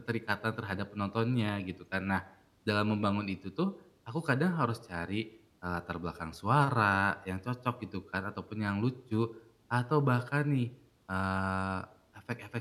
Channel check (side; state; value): both; identical; correlation 1.00